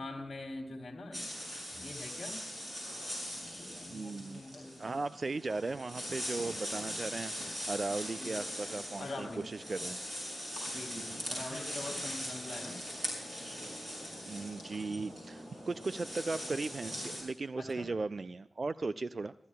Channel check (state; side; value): normal; both; correlation 0.93